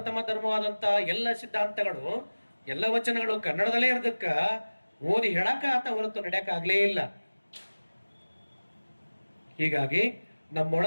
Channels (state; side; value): inverted; both; correlation -1.00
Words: ಧರ್ಮವಾದಂತ ಎಲ್ಲ ಸಿದ್ಧಾಂತಗಳು, ಎಲ್ಲ ವಚನಗಳು ಕನ್ನಡದಲ್ಲೇ ಇರೋದಕ್ಕ ಓದಿ ಹೇಳಕ ಆತ ಹೊರತು ನಡೆಯಕ ಆಗ್ಲೇ ಇಲ್ಲ. ಹೀಗಾಗಿ